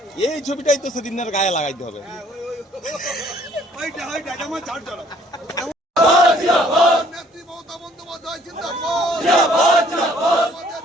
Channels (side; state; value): both; normal; correlation 0.60